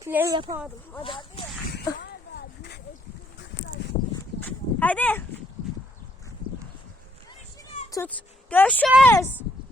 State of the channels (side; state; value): both; normal; correlation 0.71